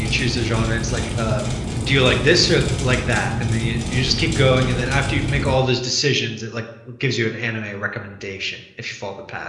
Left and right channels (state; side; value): identical; both; correlation 1.00